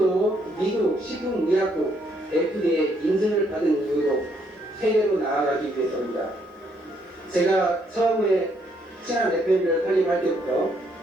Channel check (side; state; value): both; normal; correlation 0.71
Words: 미국 식품의약국 FDA 인증을 받은 이유로 세계로 나아가기 위해서입니다. 제가 처음에 친환 FM을 설립할 때부터